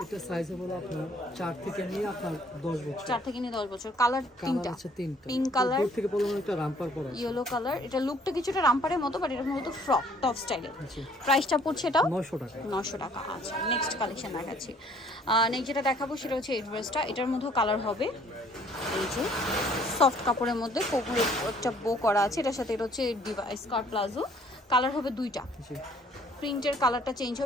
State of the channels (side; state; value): both; normal; correlation 0.60